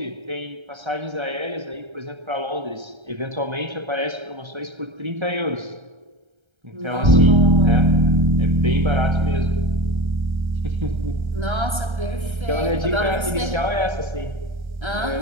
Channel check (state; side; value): late; left; 1.3 ms